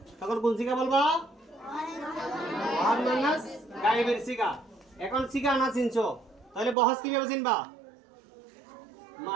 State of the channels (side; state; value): left; drops out; at 6.8 s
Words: তখন কোন সিগা বলবা? ওয়াহাদ মুআন্নাস গায়েবের সিগা। এখন সিগা না চিনছো, তাহলে বহস কিভাবে চিনবা?